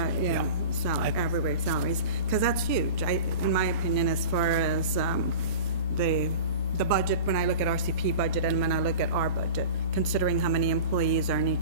wage salaries, because that's huge, in my opinion, as far as, the budget, when I look at RCP budget and when I look at our budget, considering how many employees are in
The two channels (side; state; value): both; inverted; correlation -0.36